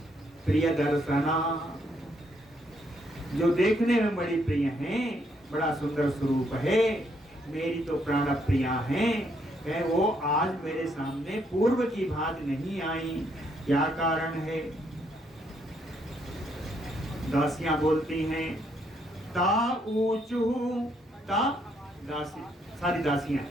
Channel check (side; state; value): both; normal; correlation 0.73